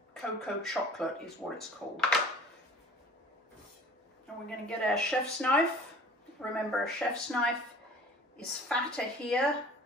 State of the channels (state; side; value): normal; both; correlation 0.47